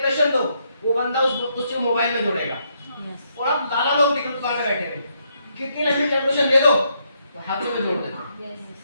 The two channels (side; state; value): both; inverted; correlation -0.76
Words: दो, वो बंदा उसको मोबाइल में जोड़ेगा। और आप दादा लोग दिख दुकान में बैठे हैं, कितनी लंबी कैलकुलेशन दे दो तो हाथों में जोड़ देते।